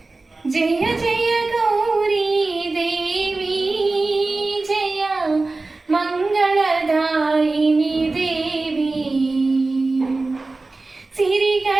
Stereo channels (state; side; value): quieter; left; 3.4 dB